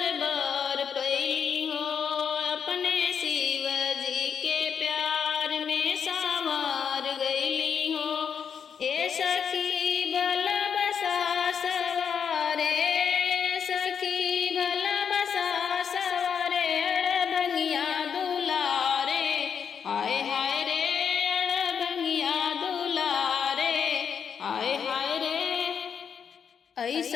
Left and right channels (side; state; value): right; quieter; 7.1 dB